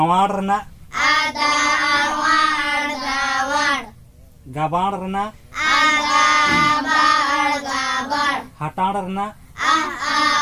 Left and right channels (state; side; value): identical; both; correlation 1.00